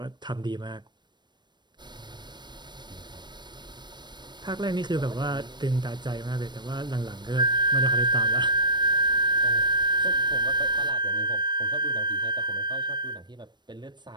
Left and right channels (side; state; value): left; late; 0.22 ms